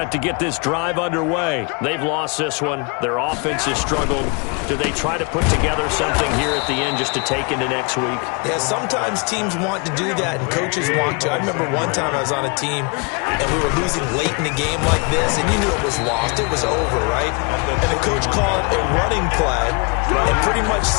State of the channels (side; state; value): right; quieter; 33.3 dB